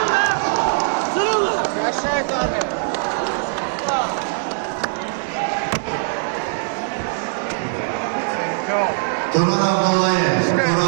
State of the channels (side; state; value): left; silent; digital silence